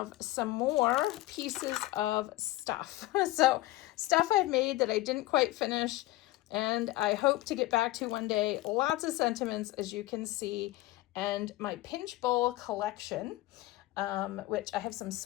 some more pieces of stuff. So stuff I've made that I didn't quite finish and I hope to get back to one day. Lots of sentiments, as you can see, and my pinch bowl collection, which I have some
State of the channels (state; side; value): quieter; right; 17.9 dB